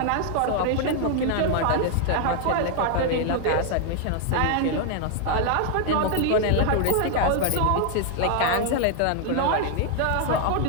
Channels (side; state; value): both; different; correlation 0.00